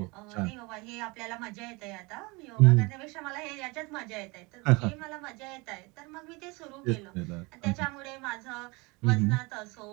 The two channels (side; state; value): left; quieter; 26.2 dB